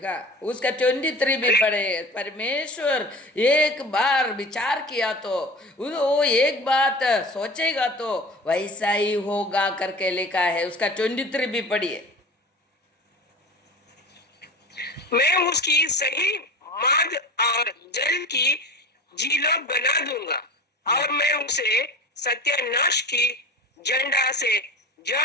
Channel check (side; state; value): both; normal; correlation 0.35